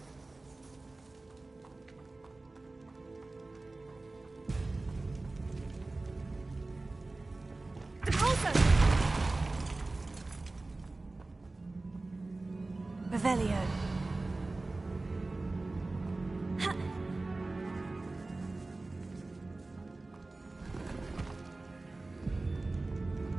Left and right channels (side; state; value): left; quieter; 3.2 dB